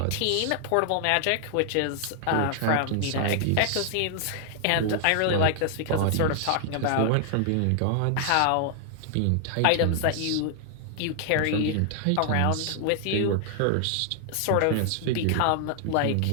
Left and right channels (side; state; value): both; different; correlation 0.00